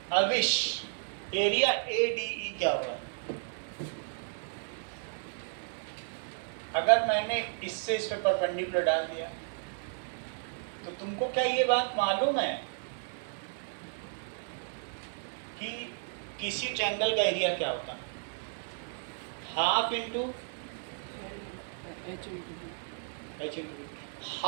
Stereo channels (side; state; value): left; silent; digital silence